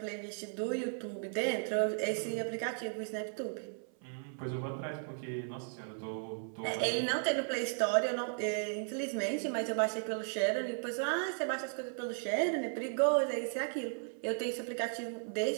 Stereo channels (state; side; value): silent; left; 54 dB below the other